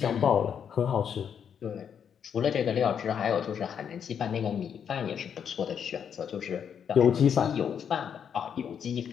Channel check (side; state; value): right; quieter; 7.9 dB